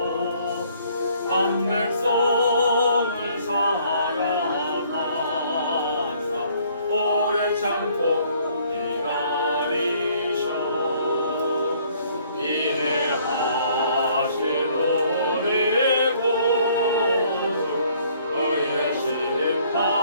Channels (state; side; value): inverted; both; correlation -0.62